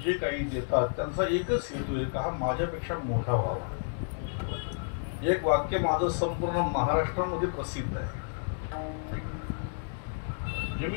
जे काही देतात त्यांचा एकच हेतू आहे का हा माझ्यापेक्षा मोठा व्हावा. एक वाक्य माझं संपूर्ण महाराष्ट्रामध्ये प्रसिद्ध आहे.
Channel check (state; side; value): silent; right; 57 dB below the other